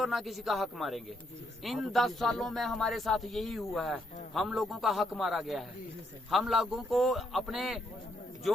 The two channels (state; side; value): normal; both; correlation 0.76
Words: ना किसी का हक मारेंगे। इन 10 सालों में हमारे साथ यही हुआ है, हम लोगों का हक मारा गया है, हम लोगों को अपने